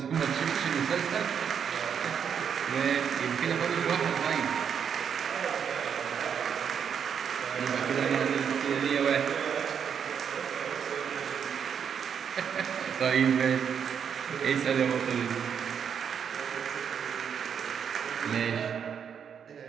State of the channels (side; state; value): left; quieter; 7.6 dB